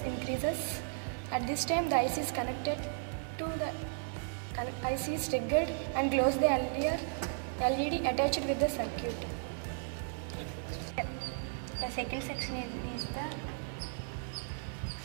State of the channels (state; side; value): silent; left; digital silence